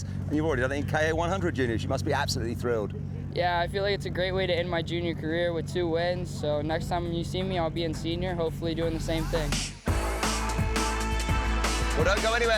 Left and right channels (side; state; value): both; identical; correlation 1.00